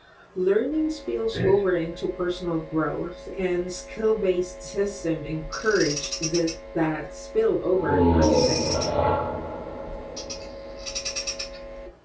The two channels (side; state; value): both; identical; correlation 1.00